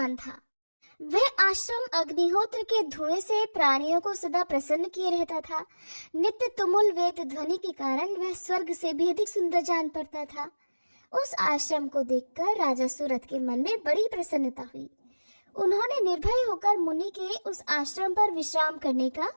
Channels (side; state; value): both; inverted; correlation -1.00